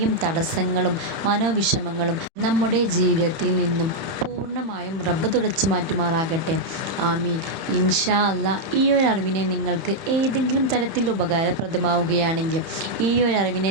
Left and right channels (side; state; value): left; late; 30 ms